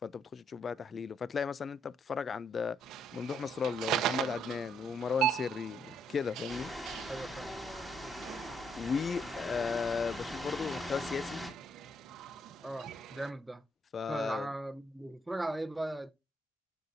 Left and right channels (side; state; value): both; normal; correlation 0.73